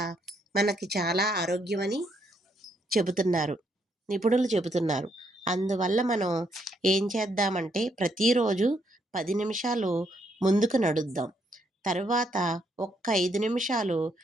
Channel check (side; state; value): both; normal; correlation 0.74